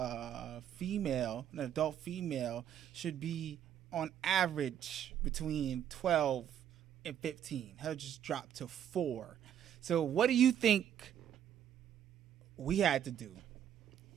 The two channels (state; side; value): quieter; left; 9.8 dB